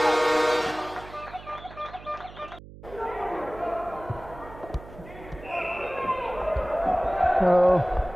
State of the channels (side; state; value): right; noise; hum, 17 dB below the sound